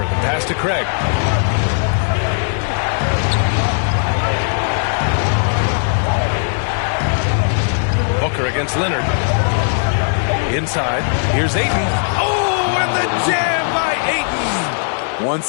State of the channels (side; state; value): right; silent; digital silence